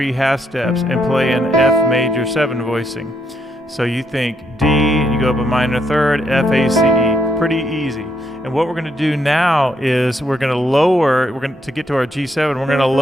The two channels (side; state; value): both; normal; correlation 0.77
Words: half steps, and play an F major 7 voicing. So you think D, and you go up a minor third, F, A, C, E. Pretty easy. And what we're going to do now is we're going to lower, to get to our G7, we're going to